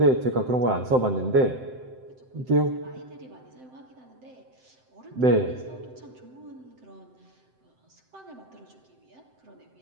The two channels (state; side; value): late; left; 7.8 ms